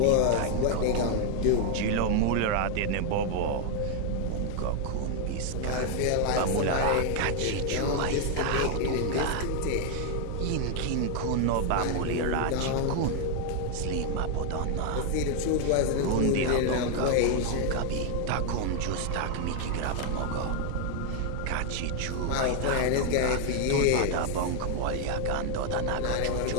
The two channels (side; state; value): both; different; correlation 0.00